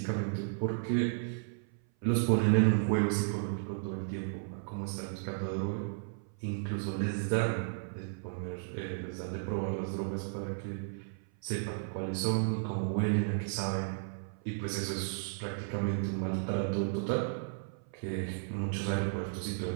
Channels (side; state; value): left; silent; 55 dB below the other